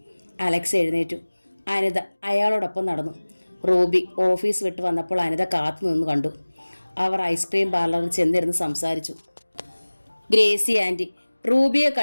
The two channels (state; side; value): inverted; both; correlation -1.00